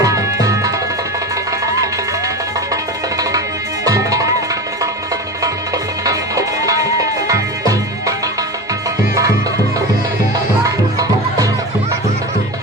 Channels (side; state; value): both; normal; correlation 0.26